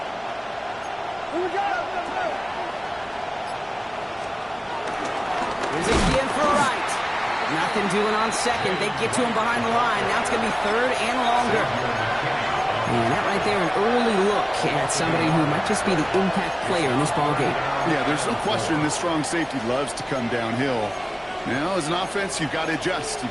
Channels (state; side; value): identical; both; correlation 1.00